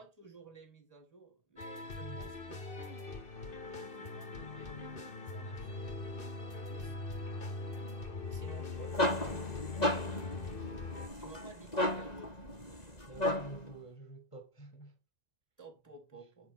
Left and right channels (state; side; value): late; right; 1.9 ms